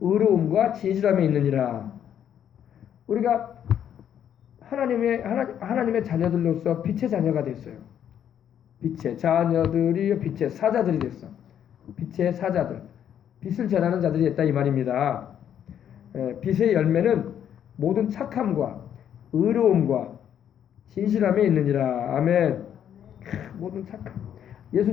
진실함에 있느니라. 우리가 하나님의 자녀들로서 빛의 자녀가 됐어요. 빛의 자녀들이 빛의 사자들이 됐어. 빛의 사자들. 빛을 전하는 자들이 됐다 이 말입니다. 빛의 열매는 모든 착함과 의로움과 진실함에 있느니라. 아멘. 모든 착함.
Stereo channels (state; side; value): quieter; right; 9.5 dB